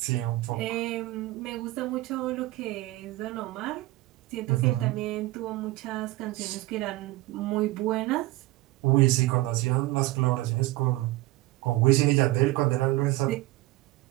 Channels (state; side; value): quieter; left; 19.0 dB